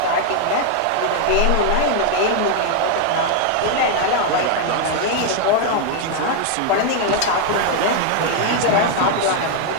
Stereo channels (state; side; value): different; both; correlation 0.00